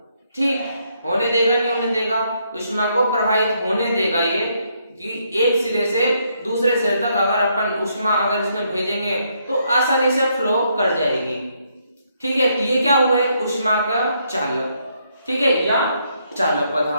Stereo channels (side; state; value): both; inverted; correlation -0.74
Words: ठीक, होने देगा नहीं होने देगा, ऊष्मा को प्रवाहित होने देगा ये, कि एक सिरे से दूसरे सिरे तक अगर अपन ऊष्मा अगर इसमें भेजेंगे तो आसानी से फ्लो कर जाएगी। ठीक है, तो ये क्या हुआ है, ऊष्मा का चालक। ठीक है, या चालक